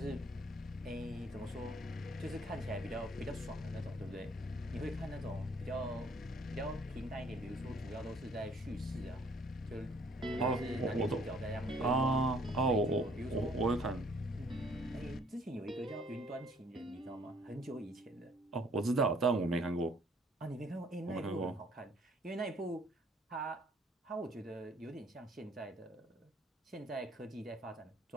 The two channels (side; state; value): both; normal; correlation 0.61